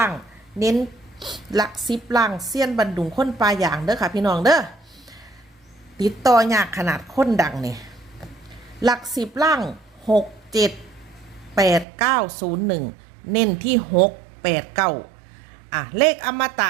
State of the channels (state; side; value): drops out; left; at 11.9 s